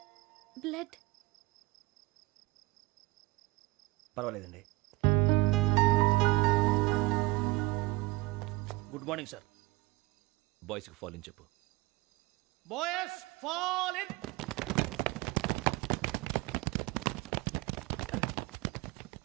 బ్లడ్. పర్వాలేదండి. Good morning sir. బాయ్స్కి ఫాల్ ఇన్ చెప్పు. Boys fall in.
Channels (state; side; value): quieter; left; 22.4 dB